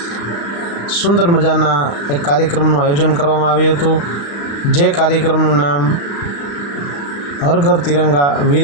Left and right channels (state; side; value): late; right; 35 ms